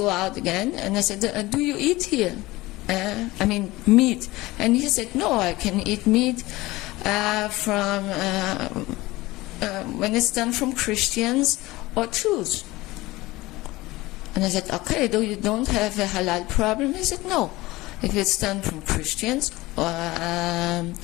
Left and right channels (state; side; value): quieter; right; 19.7 dB